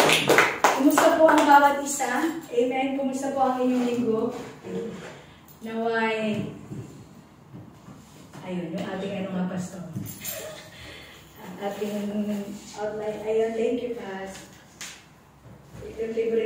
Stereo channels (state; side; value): identical; both; correlation 1.00